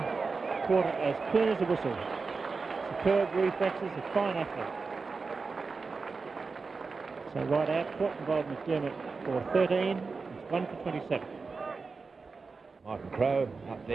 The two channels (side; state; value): left; quieter; 4.5 dB